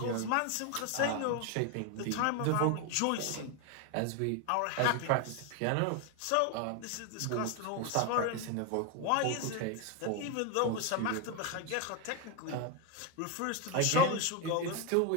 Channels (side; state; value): both; different; correlation 0.01